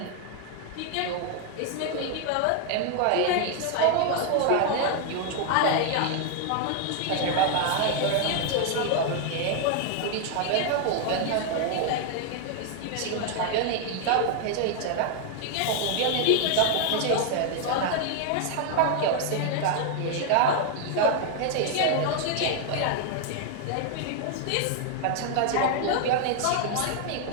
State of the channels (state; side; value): different; both; correlation 0.00